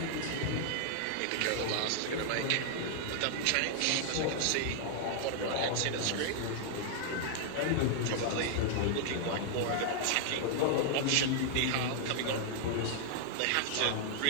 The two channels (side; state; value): both; different; correlation 0.00